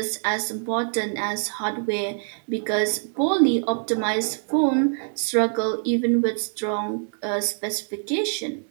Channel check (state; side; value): silent; left; digital silence